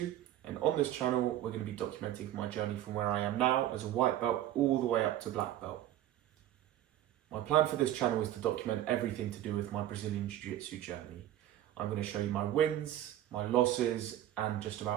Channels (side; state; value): left; quieter; 12.8 dB